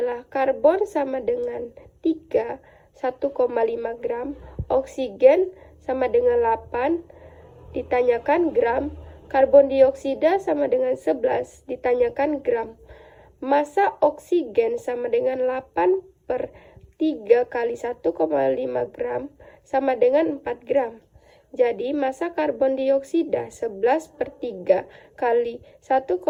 karbon sama dengan 3, 1,5 gram, oksigen sama dengan 8, ditanyakan gram, karbon dioksida sama dengan 11, ditanyakan gram. Massa oksigen sama dengan 8/3 kali 1,5 gram sama dengan 4 gram. Jadi, massa karbon dioksida 11/3 kali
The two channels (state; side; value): identical; both; correlation 1.00